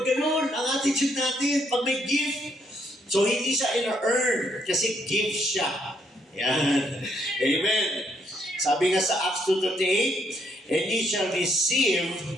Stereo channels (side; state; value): both; normal; correlation 0.73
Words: ganon? Ang attitude natin, pag may gift. So, hindi siya in-earn kasi gift siya. Yan. Amen. Sabi nga sa Acts 2:38, and ye shall receive